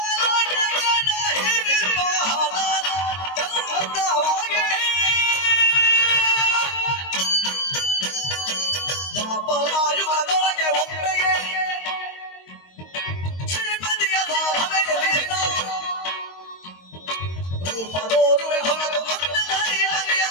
ದಾಪರಾಯುಗದೊಳಗೆ ಒಮ್ಮೆಗೆ ಶ್ರೀಮತಿಯ ಸಾಧನೆಯಲ್ಲಿನ ರೂಪದೋರುವೆ ಹೊರತು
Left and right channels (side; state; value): right; late; 22 ms